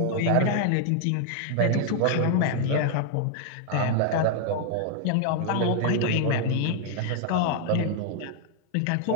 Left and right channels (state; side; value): different; both; correlation 0.00